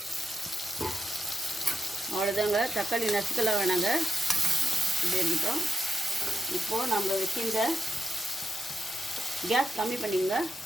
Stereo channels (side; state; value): both; normal; correlation 0.87